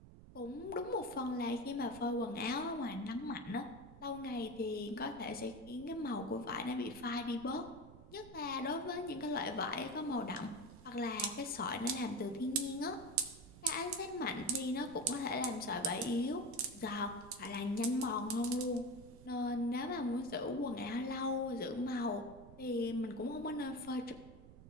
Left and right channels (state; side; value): noise; right; rumble, 18 dB below the sound